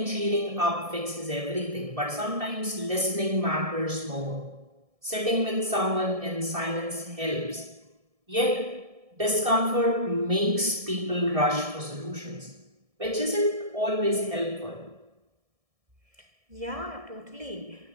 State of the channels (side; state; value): left; late; 1.6 ms